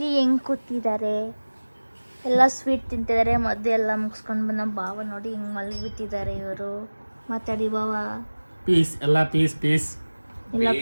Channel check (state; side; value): inverted; both; correlation -1.00